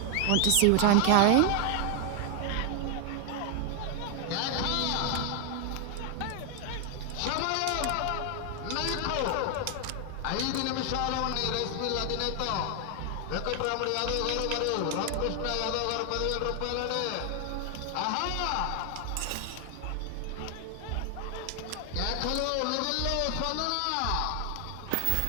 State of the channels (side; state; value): both; different; correlation 0.00